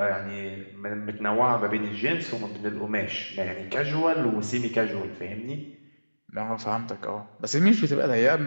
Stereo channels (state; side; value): inverted; both; correlation -1.00